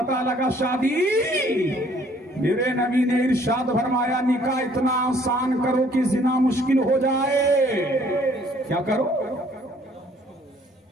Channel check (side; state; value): both; normal; correlation 0.60